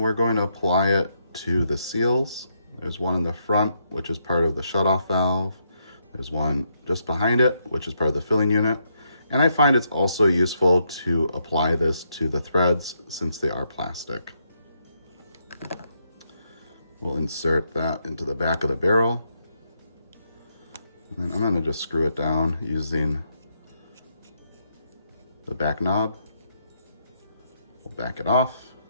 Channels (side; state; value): both; inverted; correlation -0.78